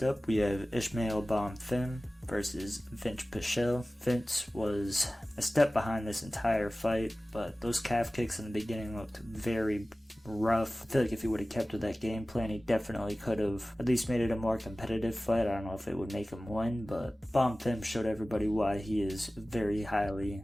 up, we have Ismael Bonfim versus Vince Pichel. Vince was a step behind this entire fight, but those calf kicks in the beginning looked very rough. I feel like if he would have kept with that game plan, he definitely could have at least made it a more competitive fight. I don't know if it would make him win, but Bonfim showed everybody why he is very highly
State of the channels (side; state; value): both; normal; correlation 0.97